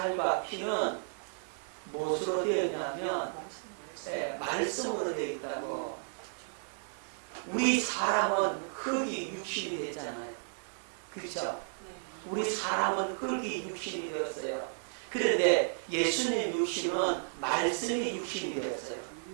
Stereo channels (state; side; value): silent; left; 55 dB below the other